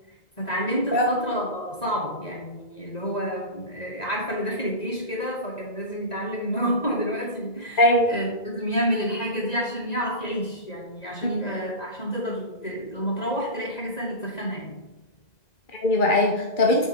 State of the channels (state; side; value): late; right; 1.9 ms